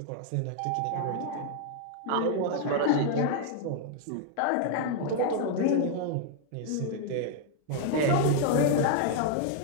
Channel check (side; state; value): both; different; correlation 0.00